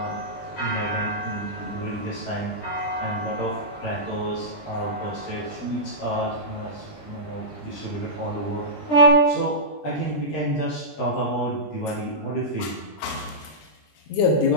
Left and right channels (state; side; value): late; right; 20 ms